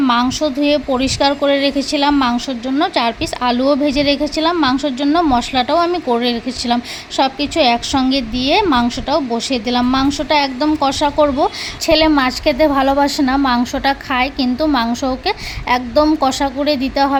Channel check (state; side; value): identical; both; correlation 1.00